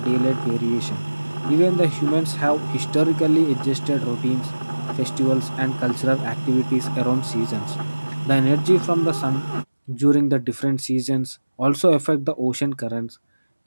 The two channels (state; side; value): inverted; both; correlation -1.00